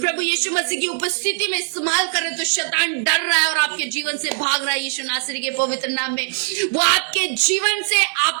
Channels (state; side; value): silent; left; digital silence